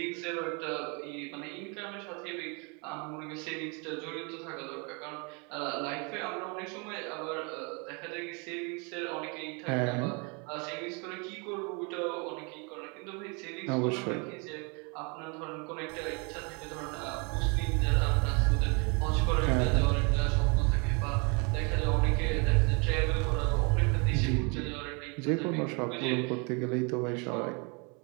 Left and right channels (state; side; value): quieter; left; 32.9 dB